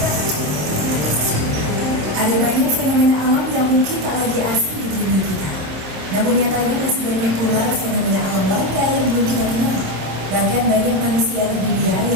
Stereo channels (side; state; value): left; late; 27 ms